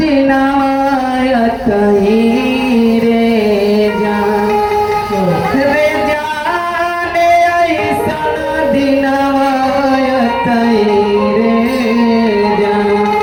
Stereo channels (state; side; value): identical; both; correlation 1.00